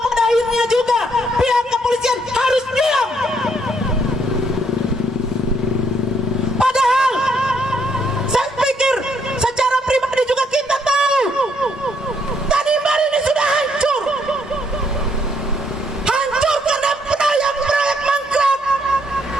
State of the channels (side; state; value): both; normal; correlation 0.71